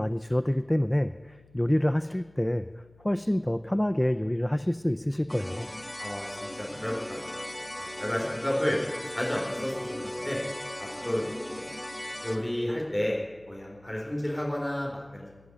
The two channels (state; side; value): noise; left; hum, 27 dB below the sound